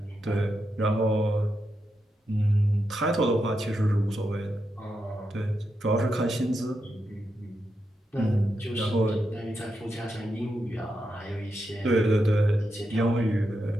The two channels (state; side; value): normal; both; correlation 0.85